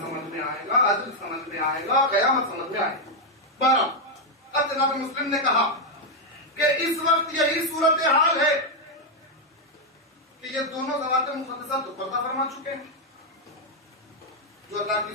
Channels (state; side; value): normal; both; correlation 0.01